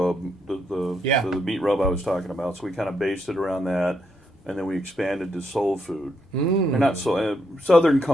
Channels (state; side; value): normal; both; correlation 0.78